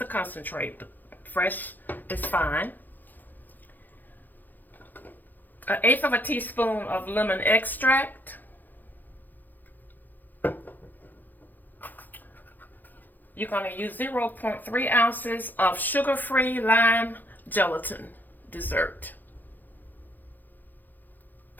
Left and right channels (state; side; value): late; right; 0.086 ms